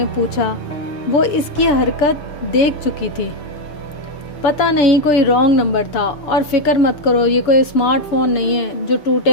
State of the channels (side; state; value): right; late; 6.8 ms